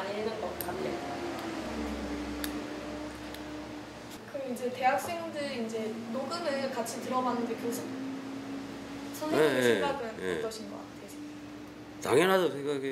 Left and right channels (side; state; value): both; identical; correlation 1.00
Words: 읽는 것 같아요. 그럼 이제 대학생들 이제 녹음을 같이 들어봤는데 선생님 생각은 어떠신 것 같아요? 당연하다고